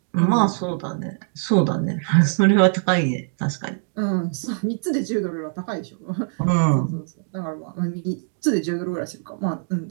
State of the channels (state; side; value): silent; left; digital silence